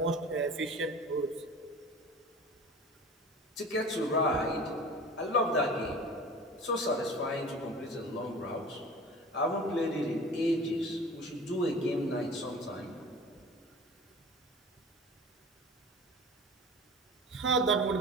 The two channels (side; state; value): both; normal; correlation 0.39